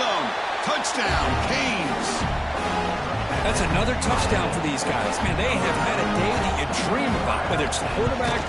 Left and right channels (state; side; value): identical; both; correlation 1.00